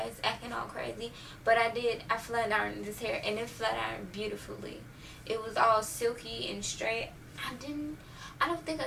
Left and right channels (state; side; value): identical; both; correlation 1.00